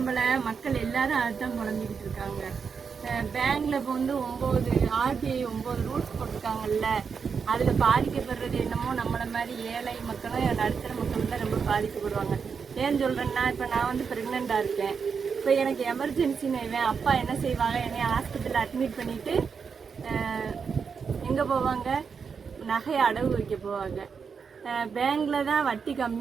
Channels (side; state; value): left; quieter; 6.0 dB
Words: மக்கள் எல்லாரும் அதுதான் புலம்பிக்கிட்டு இருக்காங்க. பேங்க்ல இப்போ வந்து 9 RBI 9 ரூல்ஸ் போட்டிருக்காங்கல்ல, அதில் பாதிக்கப்படுறது என்னமோ நம்மளை மாதிரி ஏழை மக்களும் நடுத்தர மக்களும் தான் ரொம்ப பாதிக்கப்படுவாங்க. ஏன்னு சொல்கிறேன்னா, இப்போ நான் வந்து ப்ரெக்னெண்ட்டாக இருக்கேன். இப்போ எனக்கு எமர்ஜென்சின்னு அப்பா என்ன செய்வாங்க, என்னை ஹாஸ்பிட்டலில் அட்மிட் பண்ணிவிட்டு எங்கே போவாங்க, நகையை அடகு வைக்க போவாங்க. பேங்க்கில் தான் வட்டி